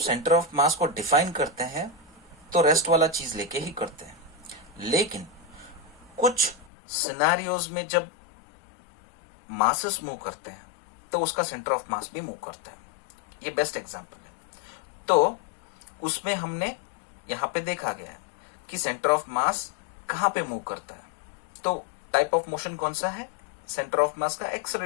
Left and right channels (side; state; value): right; drops out; at 6.7 s